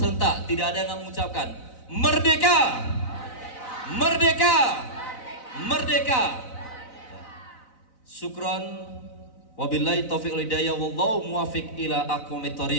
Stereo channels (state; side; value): late; right; 4.0 ms